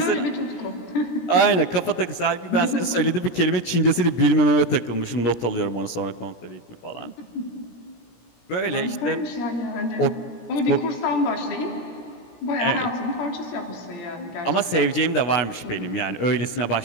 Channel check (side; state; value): right; late; 17 ms